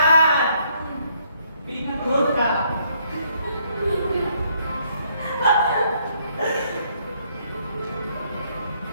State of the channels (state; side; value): inverted; both; correlation -0.69